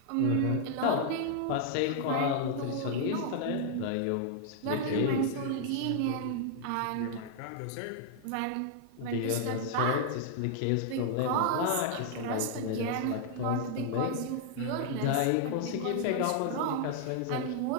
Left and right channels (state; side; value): different; both; correlation -0.01